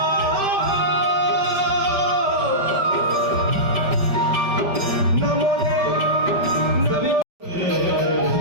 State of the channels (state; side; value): late; left; 5.1 ms